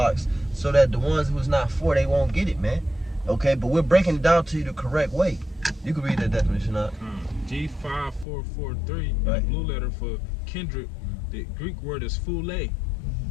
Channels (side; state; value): right; drops out; at 8.2 s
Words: so that the ones who's not for, they won't get it, man. Okay, but we're breaking it down to you the correct way. You can read that definition out. G5443, the blue letter for kindred, the Greek word is phule.